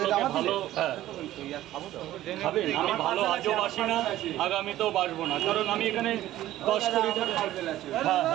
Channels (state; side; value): quieter; left; 14.3 dB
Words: ভালো খাবেন, আমি ভালো আজও বাসি না, আগামীতেও বাসবো না, কারণ আমি এখানে 10 কোটি টাকা।